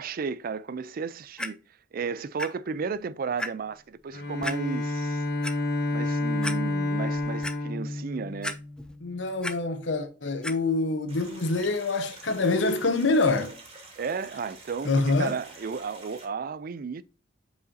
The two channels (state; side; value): normal; both; correlation 0.25